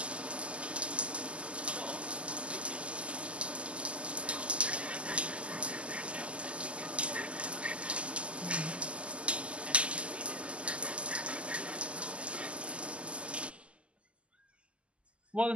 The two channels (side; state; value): left; late; 0.056 ms